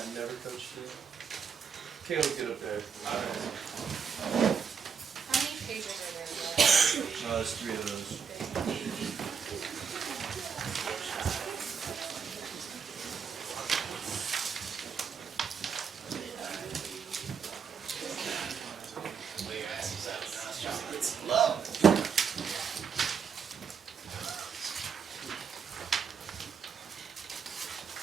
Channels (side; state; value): left; quieter; 6.5 dB